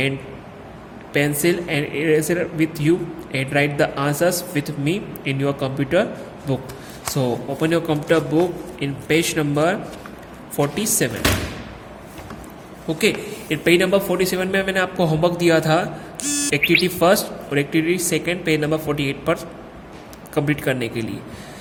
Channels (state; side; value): identical; both; correlation 1.00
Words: pencil and eraser with you and write the answers with me in your computer book. So open your computer book in page number 47. Okay, in page number 47 में मैंने आपको homework दिया था activity first और activity second page number 48 पर complete करने के लिए।